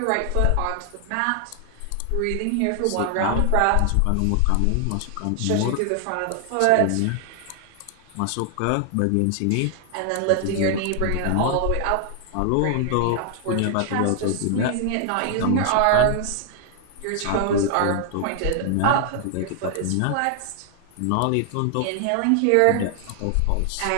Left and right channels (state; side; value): different; both; correlation 0.00